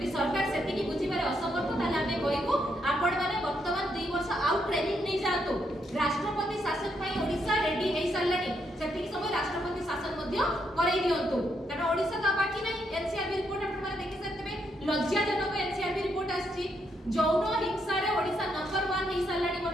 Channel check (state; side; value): normal; both; correlation 0.77